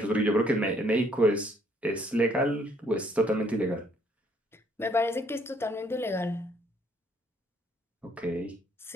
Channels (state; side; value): normal; both; correlation 0.66